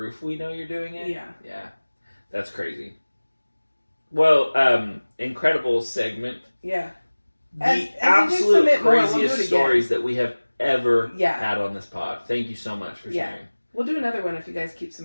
we know you're doing it. Yeah. Yeah. That's crazy. Well, incredible segment. Yeah. The absolute craziest stories that we have ever had on this pod. Thank you so much for sharing. We'll do another one if you guys keep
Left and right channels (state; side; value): inverted; both; correlation -1.00